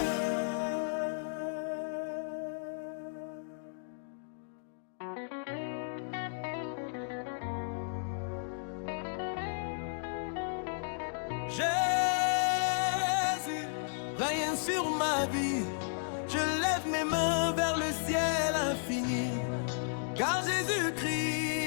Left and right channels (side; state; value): right; silent; digital silence